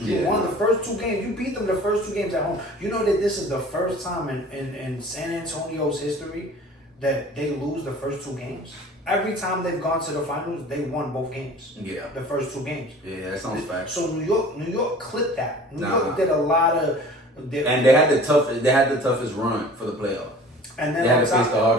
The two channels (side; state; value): both; normal; correlation 0.45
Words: won the first 2 games. You beat them the first 2 games at home. You know that this is the first time in San Antonio's history that they lose the first 2 games. every time they've gone to the finals, they won both games. Yeah. The first 2 games. Yeah, that sounds fact. So New York clipped that. New York did a lot of. And they had the toughest run for the playoff. And then they had to face the